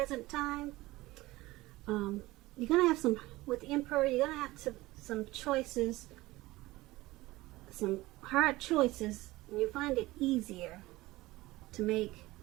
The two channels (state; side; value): quieter; left; 19.1 dB